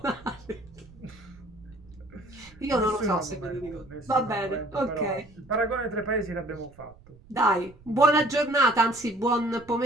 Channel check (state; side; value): noise; right; rumble, 24 dB below the sound